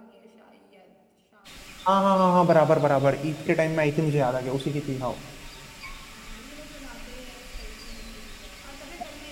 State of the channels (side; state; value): both; identical; correlation 1.00